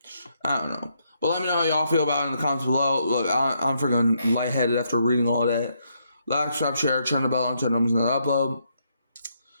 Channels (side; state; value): both; inverted; correlation -0.77